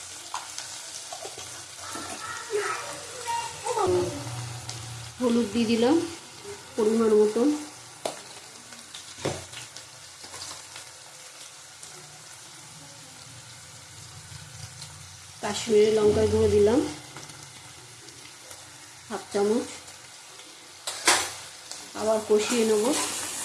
হলুদ দিয়ে দিলাম পরিমাণ মতন, কাশ্মীরি লঙ্কার গুঁড়ো দিলাম 1/2 চামচ। আবার কষিয়ে নেব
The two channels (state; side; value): identical; both; correlation 1.00